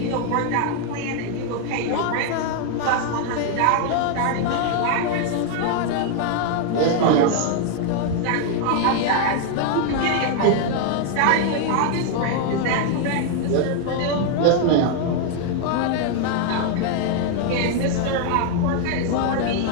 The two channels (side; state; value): both; different; correlation 0.00